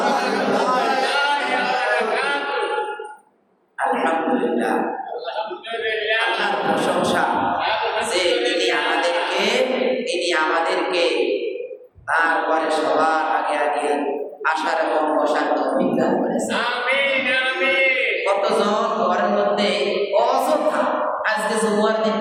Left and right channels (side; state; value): both; identical; correlation 1.00